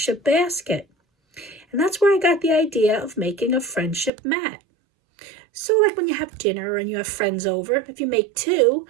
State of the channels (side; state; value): left; drops out; at 4.1 s